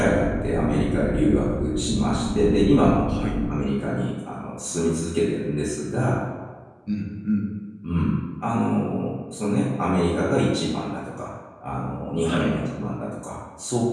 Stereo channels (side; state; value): both; identical; correlation 1.00